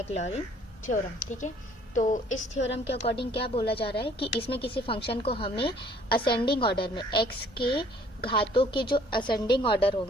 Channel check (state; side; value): normal; both; correlation 0.58